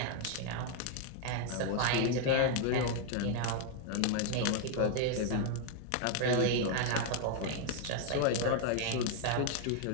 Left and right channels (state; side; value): different; both; correlation 0.00